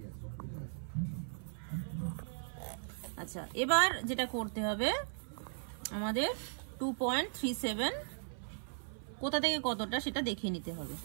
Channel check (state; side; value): silent; left; 53 dB below the other